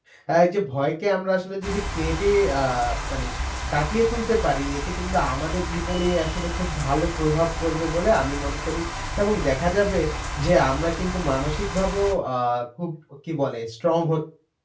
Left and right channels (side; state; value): both; identical; correlation 1.00